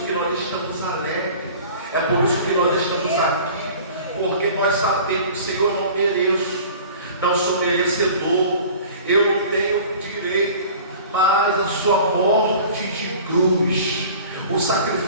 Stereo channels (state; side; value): inverted; both; correlation -0.43